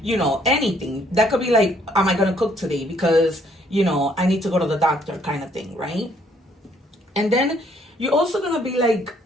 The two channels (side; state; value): both; normal; correlation 0.65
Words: anything. That could be like, am I gonna cook today? Because, I need to go to the doctor kind of thing, right? And then you're also gonna be like,